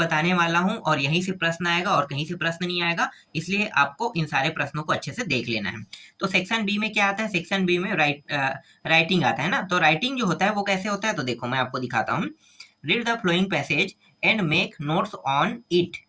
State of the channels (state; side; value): identical; both; correlation 1.00